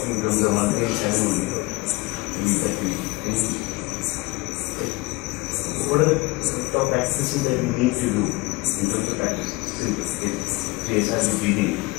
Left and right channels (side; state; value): right; quieter; 23.3 dB